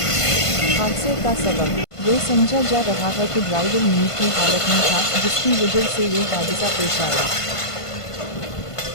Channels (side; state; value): right; late; 1.5 ms